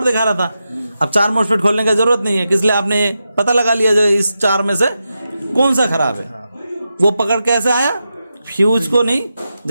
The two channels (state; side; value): inverted; both; correlation -0.89